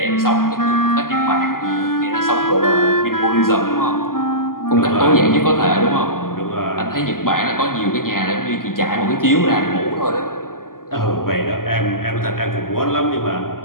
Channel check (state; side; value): late; right; 0.91 ms